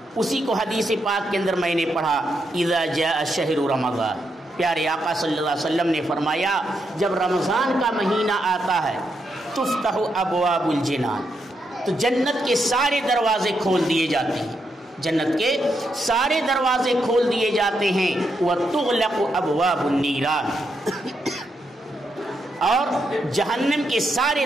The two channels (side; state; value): both; normal; correlation 0.81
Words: اسی کو حدیث پاک کے اندر میں نے پڑھا، اذا جاء شہر رمضان، پیارے آقا صلی اللہ علیہ وسلم نے فرمایا جب رمضان کا مہینہ آتا ہے تفتح ابواب الجنان، تو جنت کے سارے دروازے کھول دیے جاتے ہیں، جنت کے سارے دروازے کھول دیے جاتے ہیں، وتغلق ابواب النیران، اور جہنم کے سارے